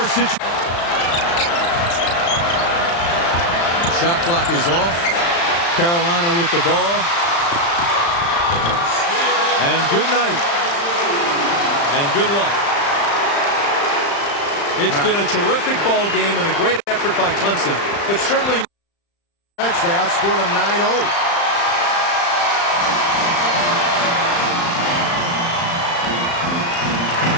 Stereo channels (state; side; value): late; right; 35 ms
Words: situation. Shot clock is off. Carolina with the ball. And good night. And good luck. It's been a terrific ball game and a great effort by Clemson, but certainly they outscored them 9-0.